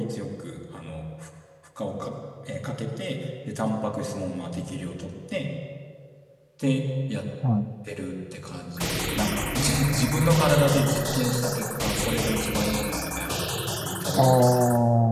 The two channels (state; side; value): identical; both; correlation 1.00